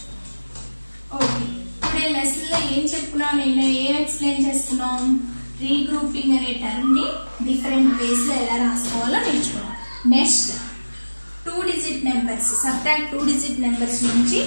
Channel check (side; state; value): both; inverted; correlation -1.00